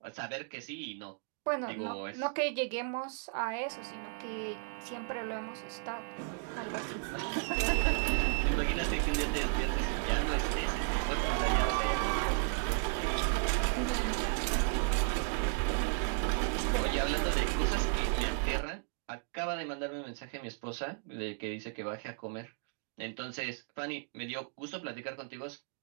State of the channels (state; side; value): silent; left; 55 dB below the other